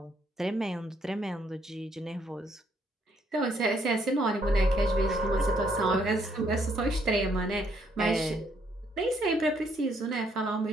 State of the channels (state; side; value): normal; both; correlation 0.70